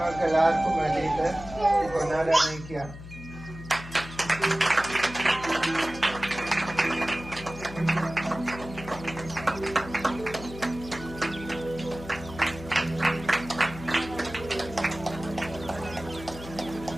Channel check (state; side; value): noise; left; hum, 13 dB below the sound